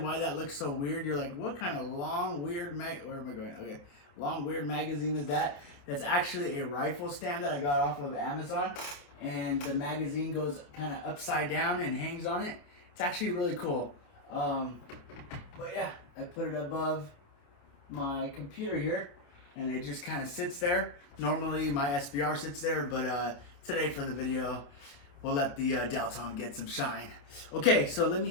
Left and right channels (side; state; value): right; late; 28 ms